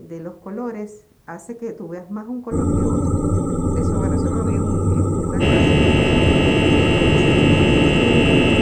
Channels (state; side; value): identical; both; correlation 1.00